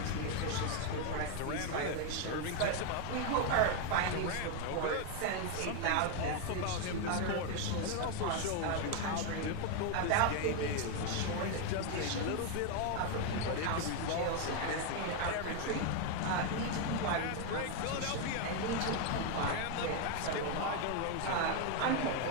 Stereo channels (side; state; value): both; different; correlation 0.01